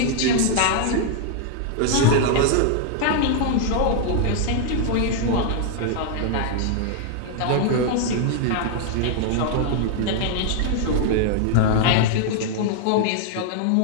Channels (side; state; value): both; different; correlation 0.00